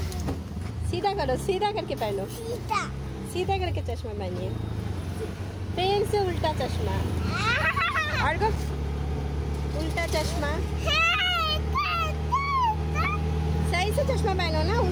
सीधा करो, सीधा करके पहनो, सीधा करके चश्मा पहनिए, फिर से उल्टा चश्मा, और उल्टा चश्मा, सही से चश्मा पहनो ना,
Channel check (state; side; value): identical; both; correlation 1.00